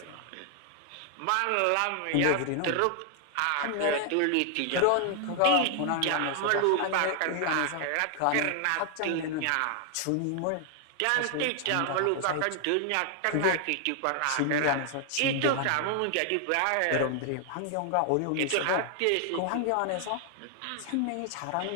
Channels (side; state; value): both; different; correlation 0.00